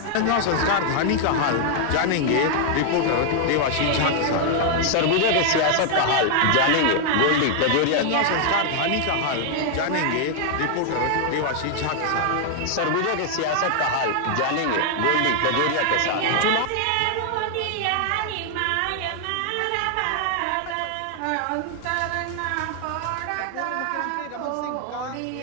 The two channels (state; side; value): different; both; correlation 0.00